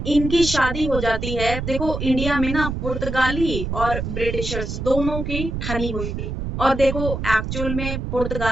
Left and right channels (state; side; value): noise; right; rumble, 4 dB below the sound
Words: इनकी शादी हो जाती है, देखो इंडिया में ना पुर्तगाली और ब्रिटिशर्स दोनों की ठनी हुई थी, और देखो एक्चुअल में